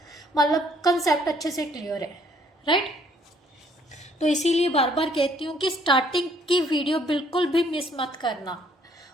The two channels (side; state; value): both; normal; correlation 0.64